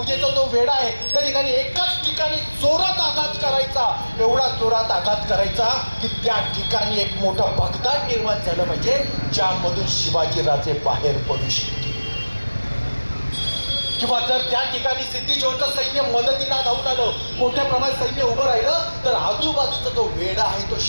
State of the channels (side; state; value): both; inverted; correlation -1.00